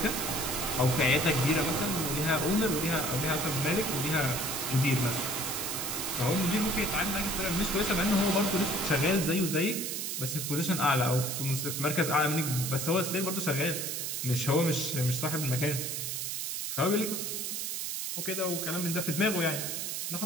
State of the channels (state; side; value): noise; right; hiss, 3 dB below the sound